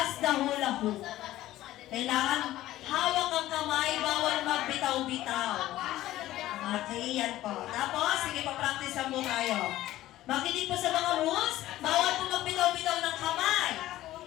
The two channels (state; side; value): quieter; right; 15.0 dB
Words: the hula hoop. Kailangan hawak ang kamay, bawal magbitaw-bitaw. Okay, yan po. Tapos, sige pa practice mo tayo. Makinig po sa mga rules, bawal po magbitaw-bitaw ng kamay.